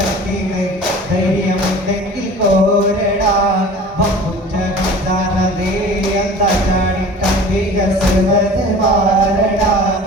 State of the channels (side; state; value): both; normal; correlation 0.42